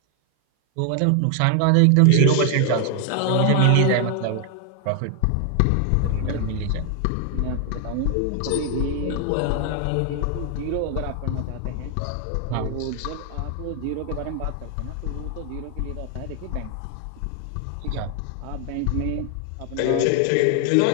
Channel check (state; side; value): different; both; correlation 0.00